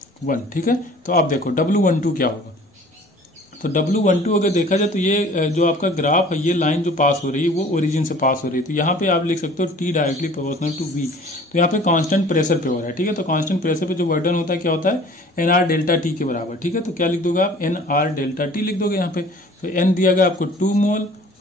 1, ठीक है। तो आप देखो W12 क्या होगा, तो W12 अगर देखा जाए तो ये जो आपका ग्राफ है, ये लाइन जो पास हो रही है वो ओरिजिन से पास हो रही है। तो यहाँ पे आप लिख सकते हो T directly proportional to V। तो यहाँ पे कांस्टेंट प्रेशर पे हो रहा है, ठीक है। तो कांस्टेंट प्रेशर पे जो वर्क डन होता है क्या होता है, NR डेल्टा T के बराबर, ठीक है। तो क्या लिख दोगे आप, NR डेल्टा T लिख दोगे यहाँ पे। तो N दिया गया आपको 2 मोल,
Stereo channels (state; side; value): normal; both; correlation 0.49